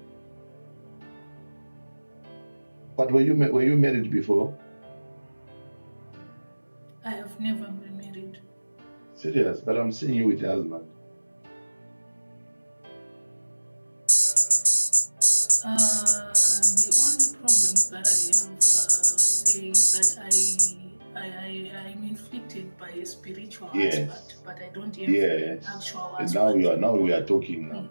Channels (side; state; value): both; inverted; correlation -1.00